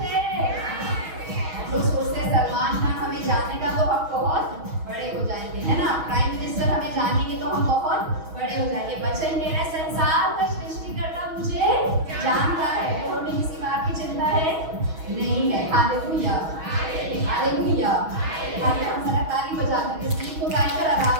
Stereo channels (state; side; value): late; left; 6.3 ms